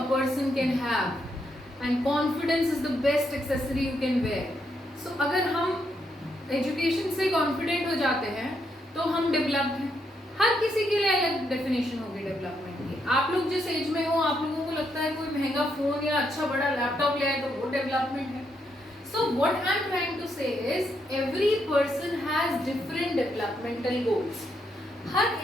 person can have, and confidence is the best accessory you can wear. So अगर हम एजुकेशन से कॉन्फिडेंट हो जाते हैं तो हम डेवलप्ड हैं. हर किसी के लिए अलग डेफिनेशन होगी डेवलपमेंट की. आप लोग जिस एज में हो, आप लोगों को लगता है कोई महंगा फोन या अच्छा बड़ा लैपटॉप ले आए तो वो डेवलपमेंट है. So what I am trying to say is every person has has different developmental goals.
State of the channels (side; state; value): both; normal; correlation 0.78